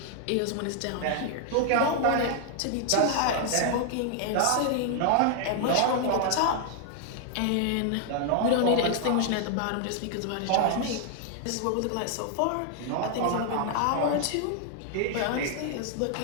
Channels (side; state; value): both; different; correlation 0.00